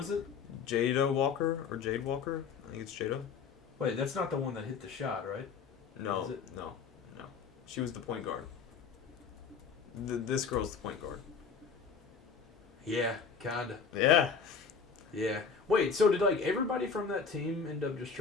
it? Jada Walker or Jade Walker? I think it's Jada. Wait, that's not the one that hit the shot, right? No, Is it? no. She was the point guard. This girl's the point guard. Yeah, kinda. Yeah. Yeah. Wait, so did like everybody from that team end up just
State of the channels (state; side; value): quieter; right; 5.8 dB